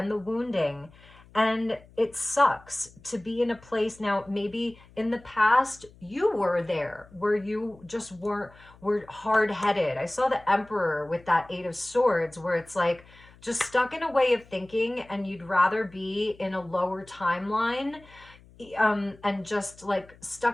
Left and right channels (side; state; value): left; noise; hum, 25 dB below the sound